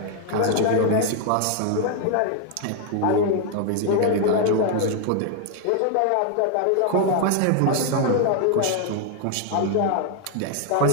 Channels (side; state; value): both; different; correlation 0.00